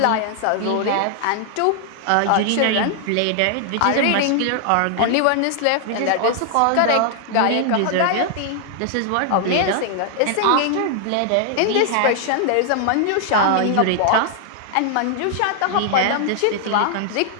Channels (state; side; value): different; both; correlation 0.00